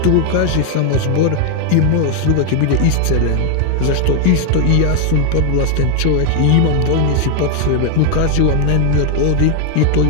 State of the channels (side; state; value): both; different; correlation 0.01